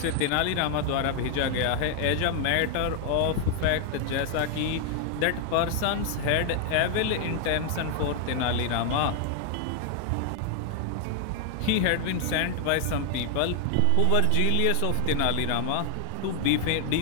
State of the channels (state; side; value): different; both; correlation 0.00